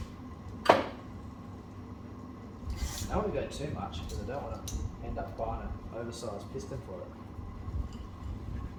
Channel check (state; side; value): identical; both; correlation 1.00